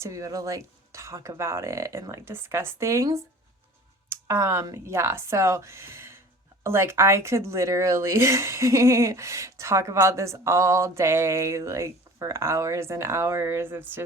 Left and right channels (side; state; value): both; normal; correlation 0.44